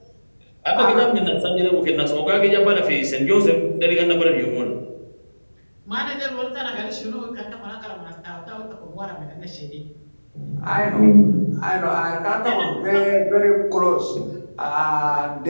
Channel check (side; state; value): both; inverted; correlation -1.00